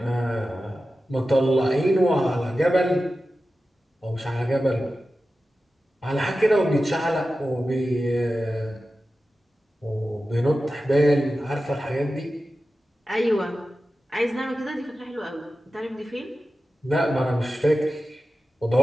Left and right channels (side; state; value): both; normal; correlation 0.93